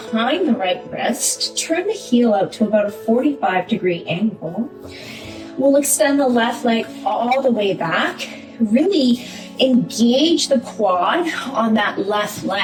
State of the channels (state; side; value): identical; both; correlation 1.00